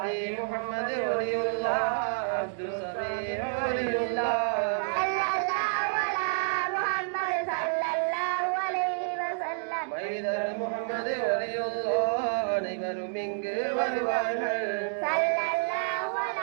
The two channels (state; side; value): silent; left; digital silence